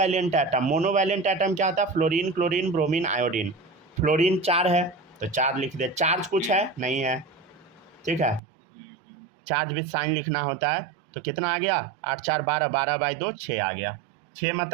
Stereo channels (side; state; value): left; drops out; at 8.4 s